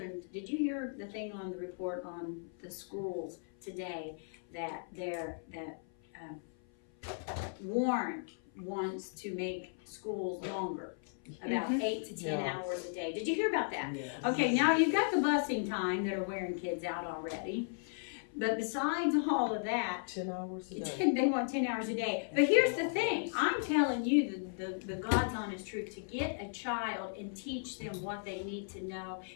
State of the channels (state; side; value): silent; right; 54 dB below the other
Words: did you hear the thing on the report on the schools today that Warren wants to make schools longer, about 8 to 10 hours a day. Did you hear about that? Yes. Okay, now you've got the busing time that are wearing kids out already. But besides all of that, 10 hours a day. they want 10 hours a day. But here's the thing, I'm telling you the God's honest truth, to get a child and teach them what they need to know,